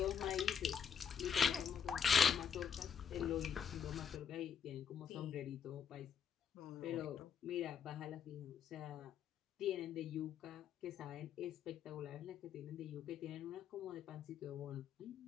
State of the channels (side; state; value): right; quieter; 7.3 dB